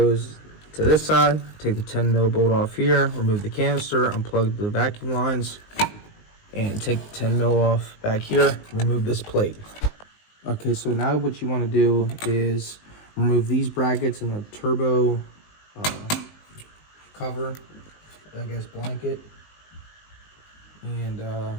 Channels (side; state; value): right; late; 19 ms